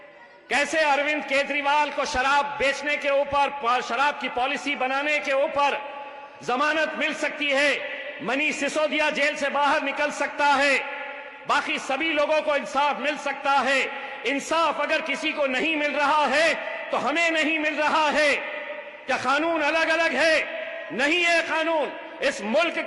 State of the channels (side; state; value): both; identical; correlation 1.00